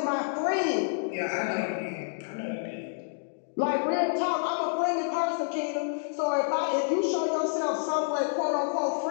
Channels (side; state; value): right; silent; digital silence